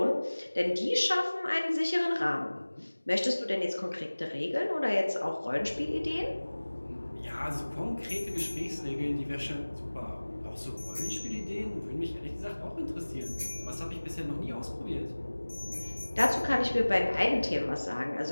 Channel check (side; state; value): both; inverted; correlation -1.00